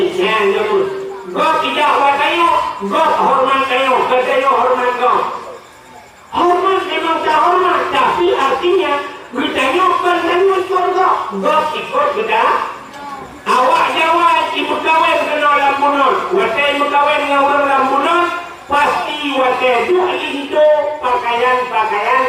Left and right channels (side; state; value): both; identical; correlation 1.00